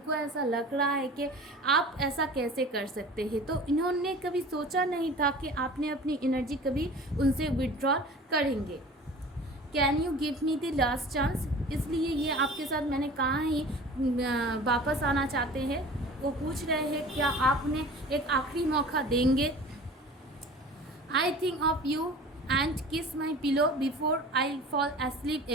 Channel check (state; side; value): normal; both; correlation 0.41